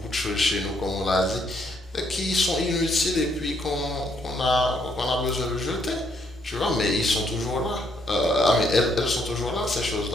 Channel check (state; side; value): normal; both; correlation 0.72